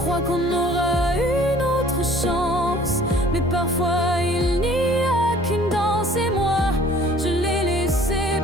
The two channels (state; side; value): normal; both; correlation 0.53